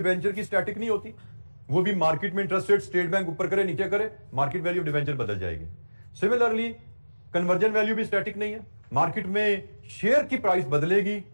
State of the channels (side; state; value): both; inverted; correlation -1.00